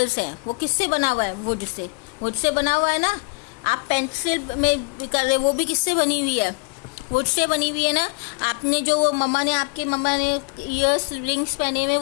हैं, वो किससे बना हुआ है? वुड से बना हुआ है ना। आप पेंसिल में कर रहे, वो भी किससे बनी हुई है? वुड से बनी हुई है ना। आपने जो आपके मम्मा ने ईयर्स रिंग्स पहने हुए,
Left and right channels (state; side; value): quieter; right; 32.6 dB